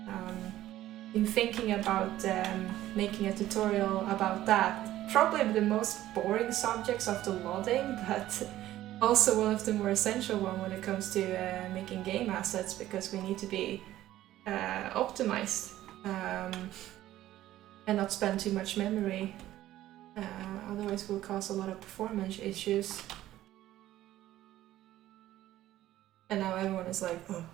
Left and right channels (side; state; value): left; quieter; 14.1 dB